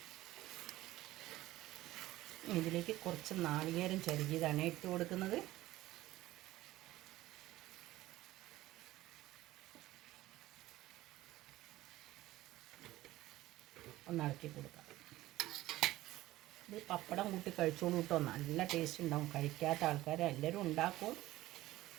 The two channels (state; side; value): quieter; left; 16.5 dB